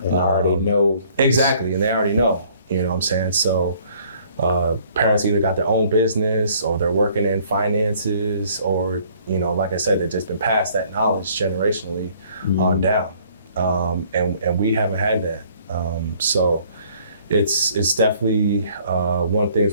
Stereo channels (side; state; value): both; inverted; correlation -0.59